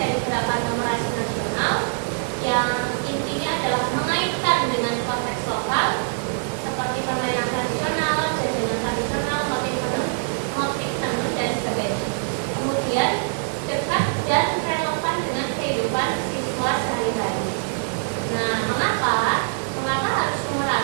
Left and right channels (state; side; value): silent; left; 63 dB below the other